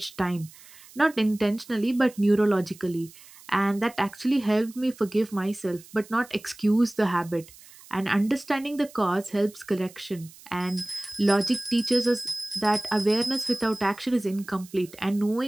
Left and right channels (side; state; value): right; noise; hiss, 22 dB below the sound